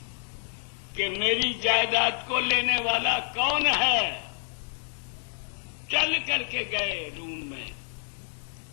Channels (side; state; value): right; silent; digital silence